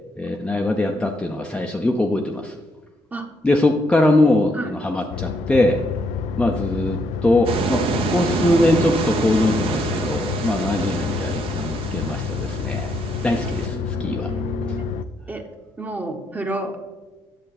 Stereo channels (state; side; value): normal; both; correlation 0.75